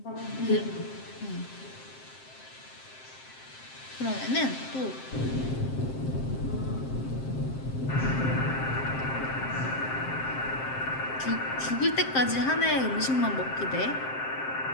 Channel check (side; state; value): right; late; 7.6 ms